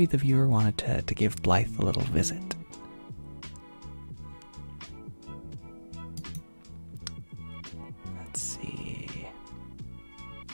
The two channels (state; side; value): inverted; both; correlation -1.00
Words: viewer wanted to give Blythe a little visit. Let's see.